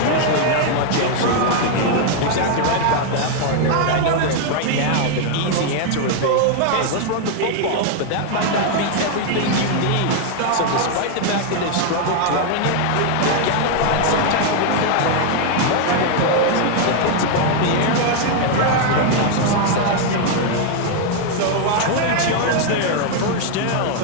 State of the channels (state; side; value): different; both; correlation 0.00